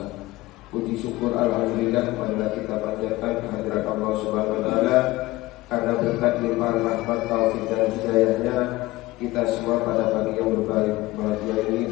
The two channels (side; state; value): right; quieter; 19.0 dB